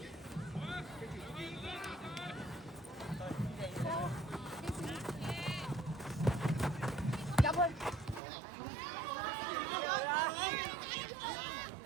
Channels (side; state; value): left; drops out; at 8.2 s